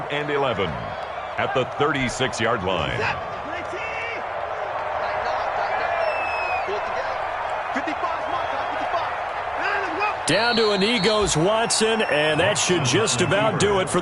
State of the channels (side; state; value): both; identical; correlation 1.00